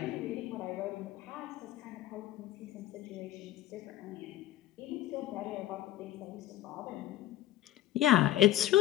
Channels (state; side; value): quieter; right; 14.1 dB